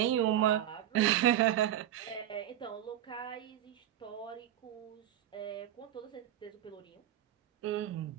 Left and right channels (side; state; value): left; quieter; 11.7 dB